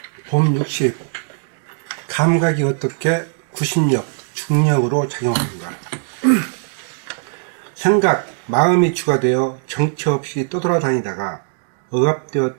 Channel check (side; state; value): left; silent; digital silence